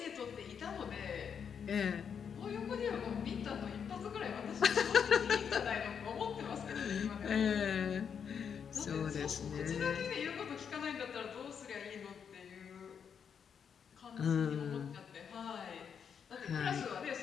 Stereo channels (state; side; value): quieter; right; 7.2 dB